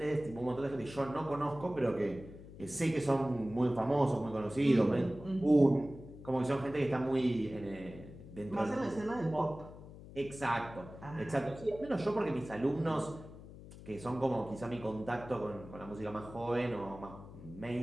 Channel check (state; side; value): noise; left; hum, 16 dB below the sound